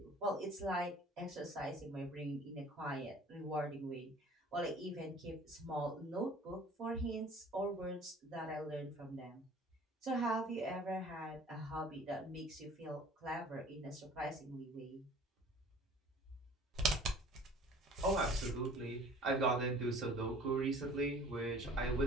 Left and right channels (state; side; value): normal; both; correlation 0.49